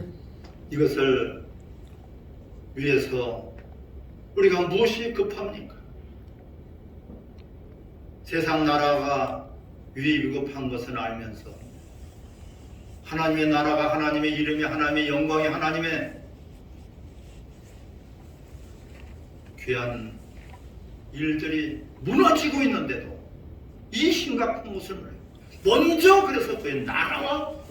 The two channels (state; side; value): identical; both; correlation 1.00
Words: 이것을 위해서 우리가 무엇이 급합니까? 세상 나라가 위급한 것은 알면서 하나님의 나라가, 하나님의 이름이, 하나님의 영광이, 하나님의 귀한 일들이 무너지고 있는데도 이 심각한 모습을 먼저 그래서 그의 나라와